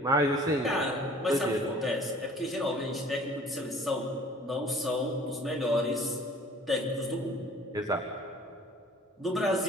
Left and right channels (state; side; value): normal; both; correlation 0.51